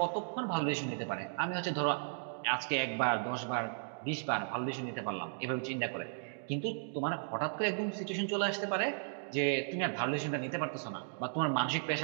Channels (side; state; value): left; silent; digital silence